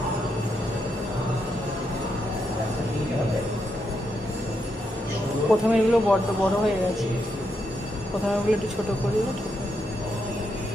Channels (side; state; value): both; normal; correlation 0.81